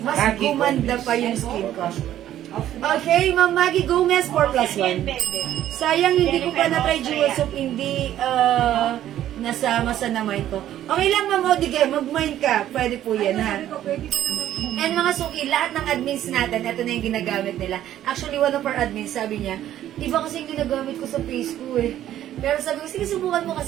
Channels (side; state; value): left; quieter; 12.1 dB